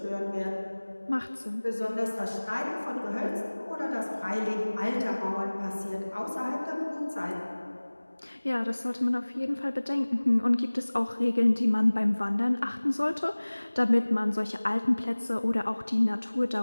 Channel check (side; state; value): both; inverted; correlation -1.00